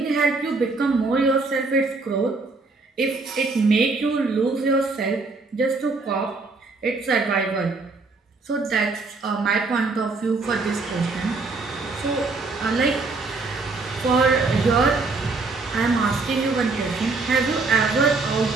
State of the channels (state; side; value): quieter; left; 3.8 dB